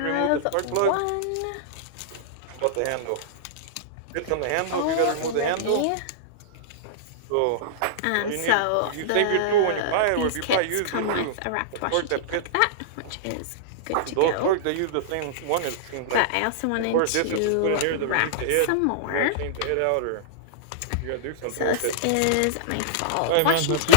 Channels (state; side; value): different; both; correlation -0.02